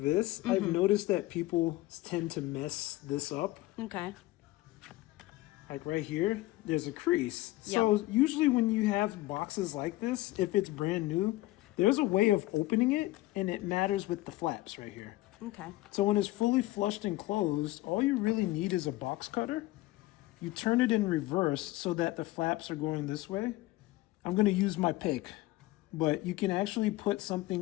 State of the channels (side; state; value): right; quieter; 18.0 dB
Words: this, I've noticed that people tend to mess this up. Okay. Like right here, there's a crease. So usually when you have boxes like this, if it's brand new, there's a way of opening it, and it matters with the flaps right here. Okay. So when it's fully flushed and closed, all you really need is a box cutter. You turn it in reverse so that the flaps are going this way. I'm going to use my pick, but you can actually put